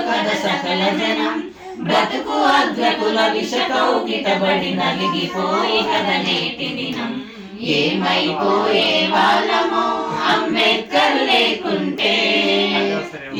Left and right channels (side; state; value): both; identical; correlation 1.00